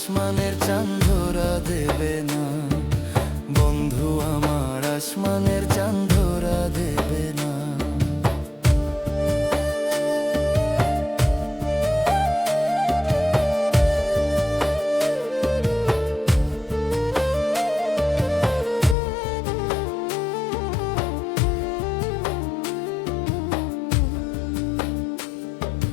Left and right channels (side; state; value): right; drops out; at 18.9 s